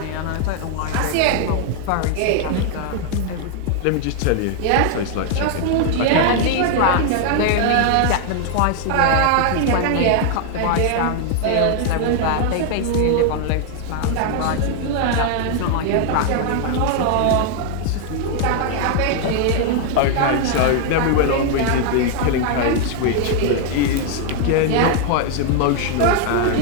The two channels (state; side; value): different; both; correlation 0.00